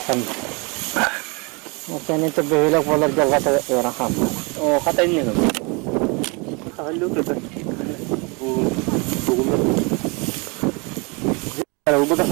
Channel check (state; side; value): quieter; left; 30.2 dB